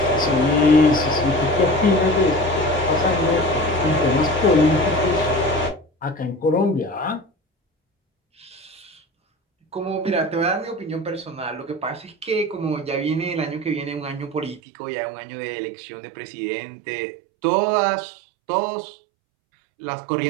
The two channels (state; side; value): drops out; left; at 14.6 s